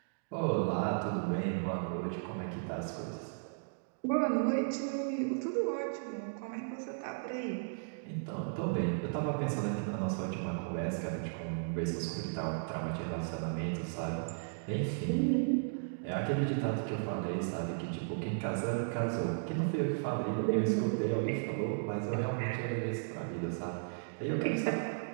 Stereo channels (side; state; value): left; silent; digital silence